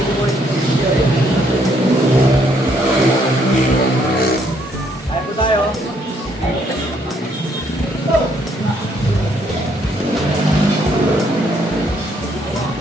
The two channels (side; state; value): both; normal; correlation 0.69